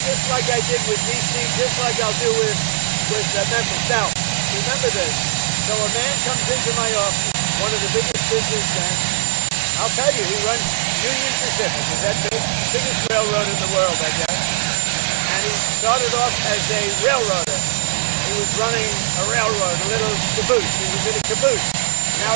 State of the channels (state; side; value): silent; left; 66 dB below the other